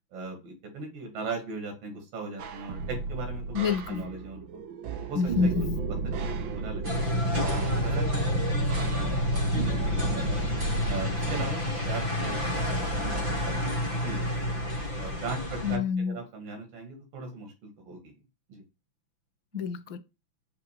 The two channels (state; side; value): late; left; 5.9 ms